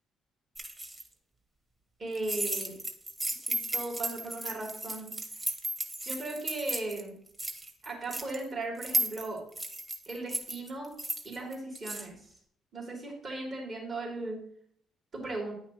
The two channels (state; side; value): normal; both; correlation 0.89